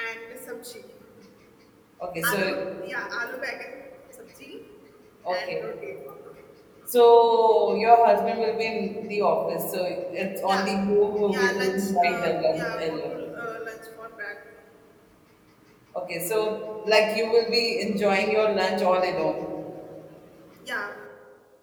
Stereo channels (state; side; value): identical; both; correlation 1.00